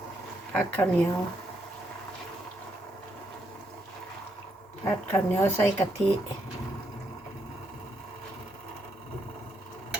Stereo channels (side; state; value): both; normal; correlation 0.77